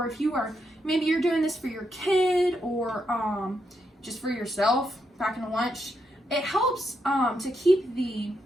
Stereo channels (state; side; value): normal; both; correlation 0.81